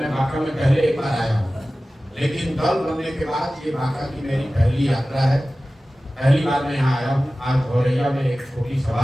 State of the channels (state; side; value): normal; both; correlation 0.96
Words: बांका में पहले एक बार आया हूँ। लेकिन दल बनने के बाद ये बांका की मेरी पहली यात्रा है। पहली बार मैं यहाँ आया हूँ। आज भौरैया में एक छोटी